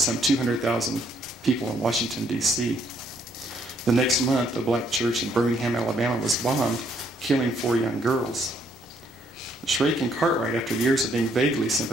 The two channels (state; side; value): normal; both; correlation 0.69